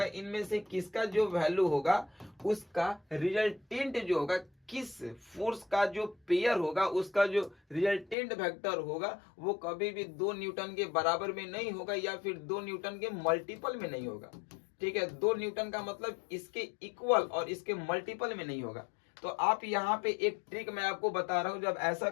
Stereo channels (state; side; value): drops out; right; at 8.2 s